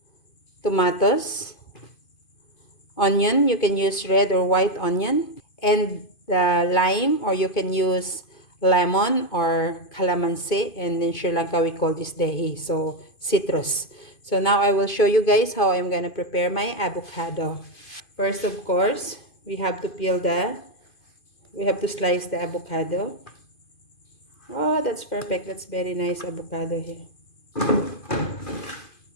tomatoes, onion, you can use red or white onion, and the lime, or you can use lemon or calamansi, and in Sri Lanka we call this dehi, so citrus. So now I will show you guys how I'm gonna prepare my avocado. First, of course, we have to slice the avocado. Oh, that's perfect. That's very nice avocado here.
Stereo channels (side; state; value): right; late; 2.5 ms